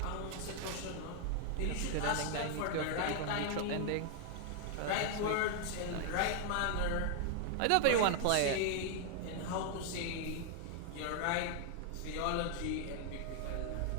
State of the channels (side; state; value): both; different; correlation 0.00